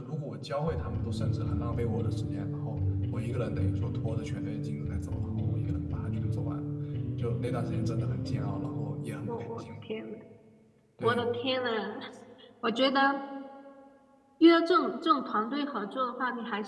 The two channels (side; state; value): both; identical; correlation 1.00